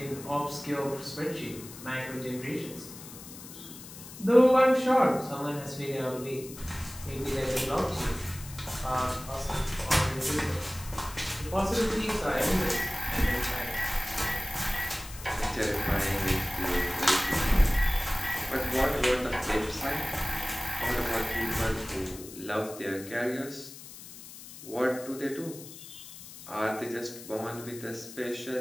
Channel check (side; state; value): left; noise; hiss, 15 dB below the sound